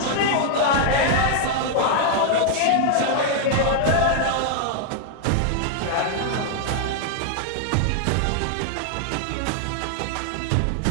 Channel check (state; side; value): different; both; correlation 0.00